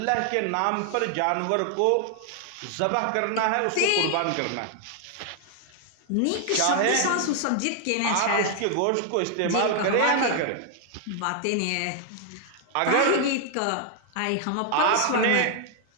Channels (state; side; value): different; both; correlation 0.00